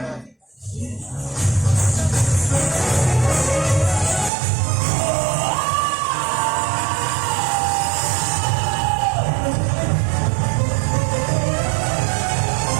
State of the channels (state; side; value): drops out; left; at 4.3 s